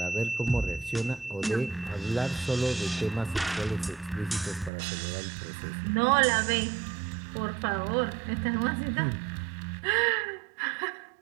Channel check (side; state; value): left; drops out; at 4.7 s